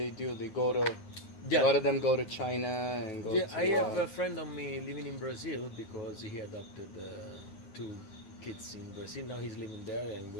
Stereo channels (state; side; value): late; right; 9.7 ms